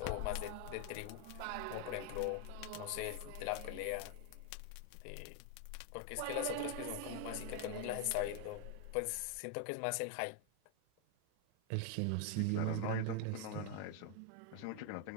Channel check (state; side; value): different; both; correlation 0.01